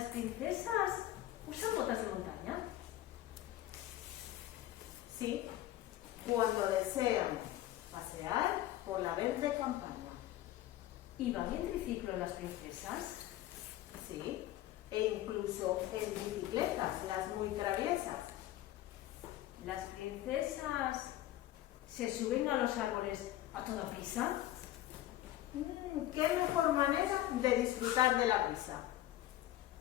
princesas usan botas de montaña? Sí, cuando desean pasear por la verde campaña. ¿Y van en triciclo las princesas? Sí, e incluso en bicicletas, las muy traviesas. ¿Las princesas se suben a los árboles a toda prisa? ¿Qué mejor manera de disfrutar de la brisa?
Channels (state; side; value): quieter; right; 14.3 dB